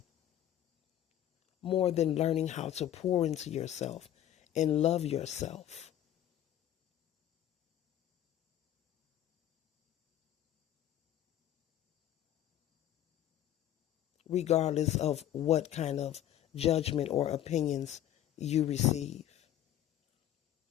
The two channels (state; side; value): quieter; right; 11.8 dB